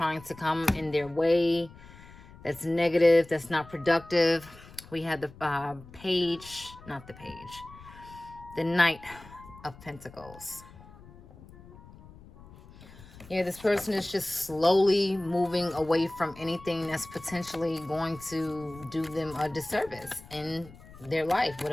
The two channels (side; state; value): left; noise; rumble, 20 dB below the sound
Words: to come in their way. That's negative, that's not productive. We had the the Knight of Pentacles. Yeah, this person is just slowly moving away from anything that's potentially going to do them a disservice in their life,